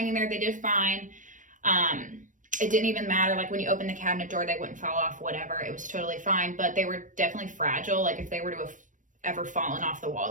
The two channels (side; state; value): left; late; 0.37 ms